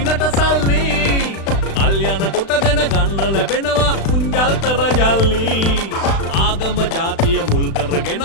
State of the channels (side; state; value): right; late; 36 ms